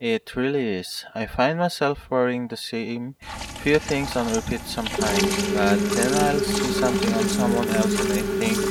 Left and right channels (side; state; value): both; identical; correlation 1.00